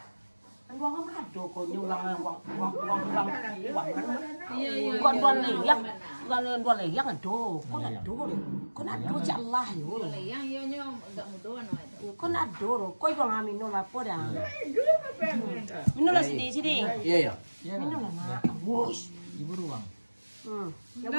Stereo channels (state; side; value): inverted; both; correlation -1.00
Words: Anu buang mado ko nyulang uang. Iya. Kon buan liang. Buan liang ado. Kon ado. Kon ado cak Allah yo. Yang yo enggak mudah no itu. Kon ado. Koi buang amino lah poda. Dua kepengen. Minum lah sini. Iya ya. Iya Minum kan. lah nak. Wush. Ibu ruang.